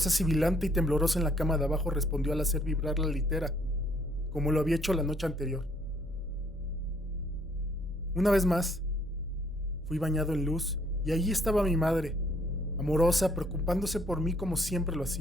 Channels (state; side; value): normal; both; correlation 0.65